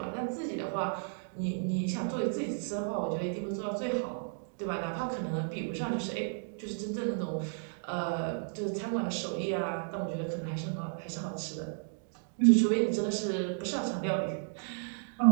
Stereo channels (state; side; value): silent; left; digital silence